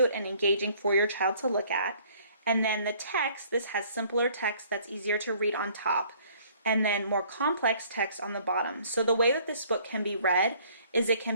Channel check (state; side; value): inverted; both; correlation -0.58